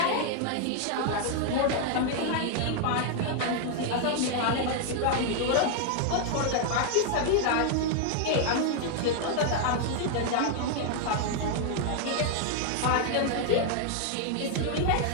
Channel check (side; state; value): both; different; correlation 0.00